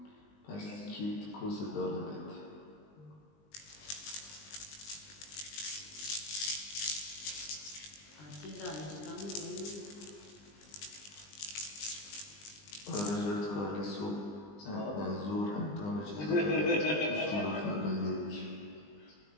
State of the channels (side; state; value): right; late; 20 ms